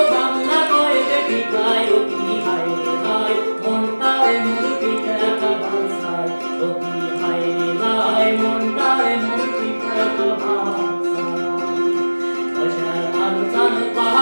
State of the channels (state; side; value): inverted; both; correlation -1.00